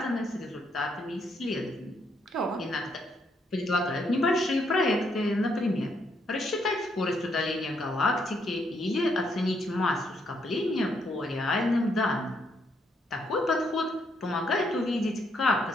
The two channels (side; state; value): both; normal; correlation 0.74